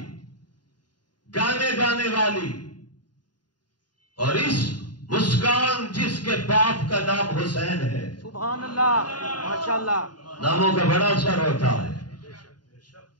گانے گانے والی، اور اس مسکان جس کے باپ کا نام حسین ہے۔ سبحان اللہ، ماشاءاللہ، ناموں کا بڑا اثر ہوتا ہے۔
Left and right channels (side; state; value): right; late; 0.70 ms